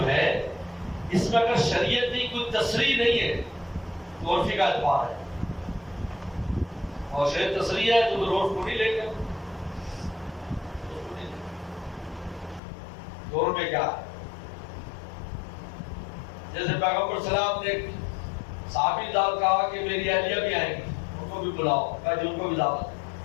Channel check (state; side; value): drops out; right; at 12.6 s